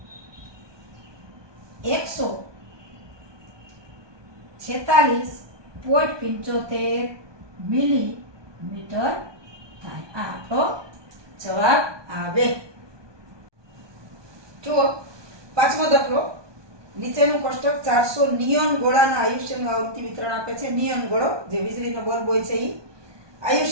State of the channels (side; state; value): left; late; 1.2 ms